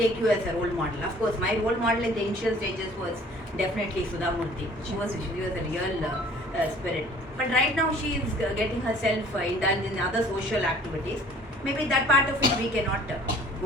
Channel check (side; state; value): both; normal; correlation 0.52